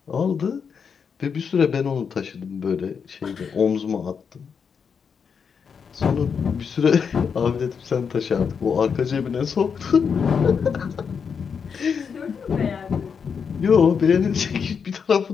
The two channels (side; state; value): right; quieter; 6.4 dB